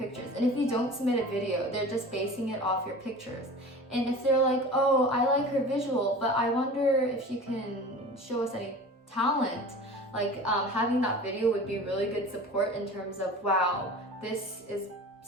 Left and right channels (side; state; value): both; normal; correlation 0.37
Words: And if you don't submit a video, they're just basing it off your pictures. And if they're like, oh, I like her visual, but I wonder if she can show us any talent, like having that video would be really good support in terms of, wow, this is